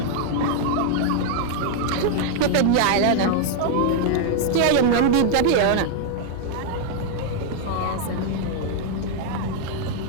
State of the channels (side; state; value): both; different; correlation 0.00